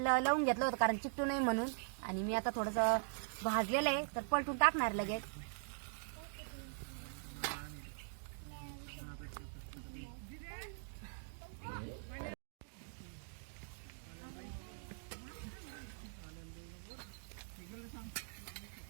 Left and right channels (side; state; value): left; silent; digital silence